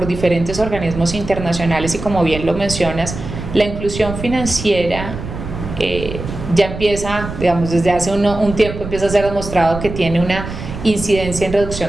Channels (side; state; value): right; noise; rumble, 8 dB below the sound